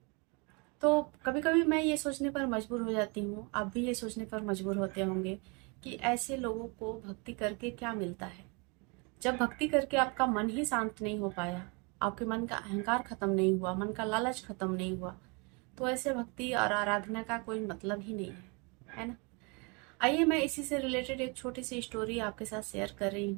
तो कभी कभी मैं ये सोचने पर मजबूर हो जाती हूँ, आप भी ये सोचने पर मजबूर होते होंगे कि ऐसे लोगों को भक्ति करके क्या मिलता है। जब भक्ति करके आपका मन ही शांत नहीं हो पाया, आपके मन का अहंकार खत्म नहीं हुआ, मन का लालच खत्म नहीं हुआ, तो ऐसे भक्ति और आराधना का कोई मतलब ही नहीं है ना। आइए मैं इसी से रिलेटेड एक छोटी सी स्टोरी आपके साथ शेयर कर रही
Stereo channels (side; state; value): left; quieter; 31.3 dB